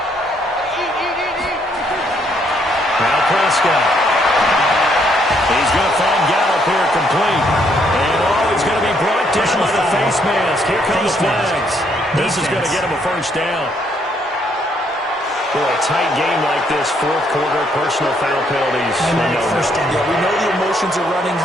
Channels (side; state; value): both; normal; correlation 0.70